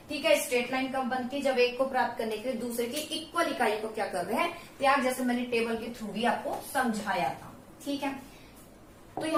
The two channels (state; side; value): identical; both; correlation 1.00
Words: ठीक है, स्ट्रेट लाइन कब बनती है, जब एक को प्राप्त करने के लिए दूसरे की इक्वल इकाई को क्या कर रहे हैं, त्याग, जैसे मैंने टेबल के थ्रू भी आपको समझाया था। ठीक है, तो